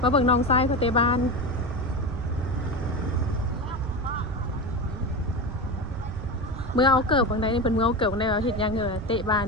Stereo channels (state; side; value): noise; right; rumble, 8 dB below the sound